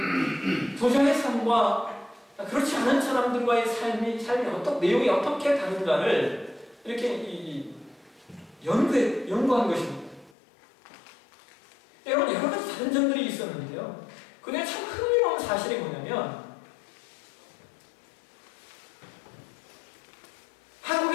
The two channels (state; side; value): drops out; right; at 10.3 s